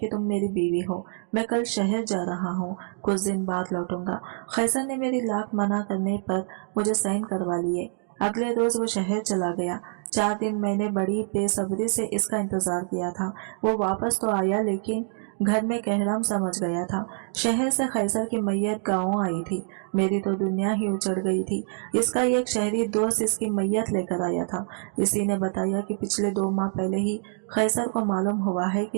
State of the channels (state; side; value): silent; left; digital silence